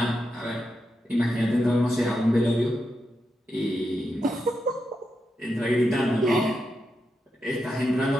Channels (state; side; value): normal; both; correlation 0.86